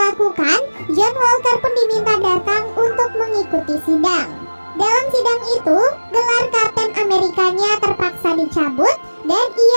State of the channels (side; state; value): both; inverted; correlation -1.00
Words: lakukan, John Walker pun diminta datang untuk mengikuti sidang. Dalam sidang itu, gelar Kapten Amerikanya terpaksa dicabut dan